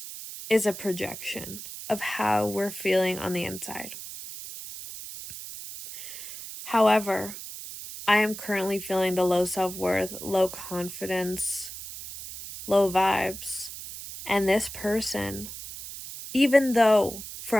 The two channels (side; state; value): right; noise; hiss, 11 dB below the sound